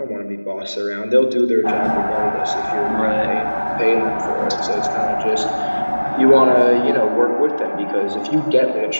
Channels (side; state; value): both; inverted; correlation -1.00